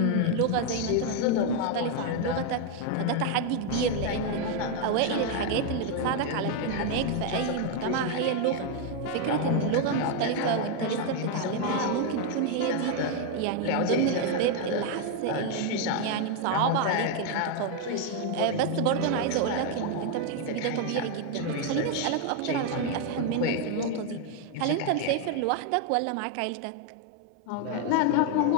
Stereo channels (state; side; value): different; both; correlation 0.01